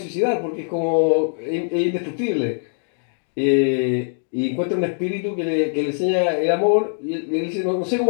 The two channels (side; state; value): right; silent; digital silence